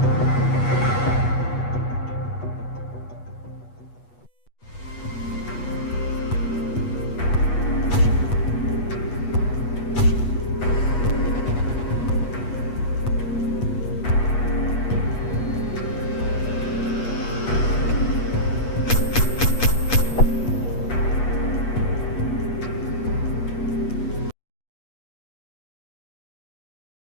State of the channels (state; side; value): late; right; 8.3 ms